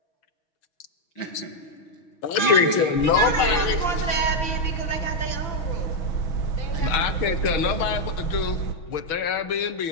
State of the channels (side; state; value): right; late; 6.2 ms